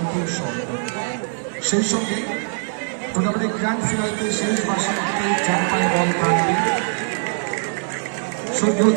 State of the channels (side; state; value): left; silent; digital silence